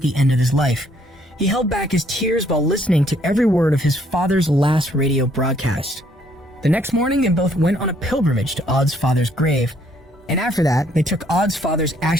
end of his life. He held back his tears while listening to every word of his father's last radio broadcast. The next morning, they both went on a pilgrimage to Odd's father's grave, and after that, they took Odd's father's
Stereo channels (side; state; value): both; normal; correlation 0.66